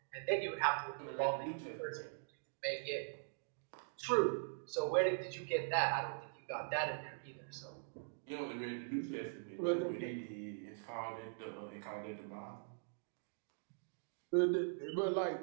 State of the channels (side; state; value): left; silent; digital silence